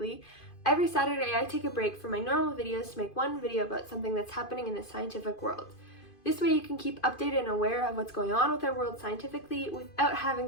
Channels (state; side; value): late; right; 2.5 ms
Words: every Saturday I take a break from my normal videos to make one video about something that's happening in the scientific world. This way you can keep updated and aware of what's going on with our world scientifically without having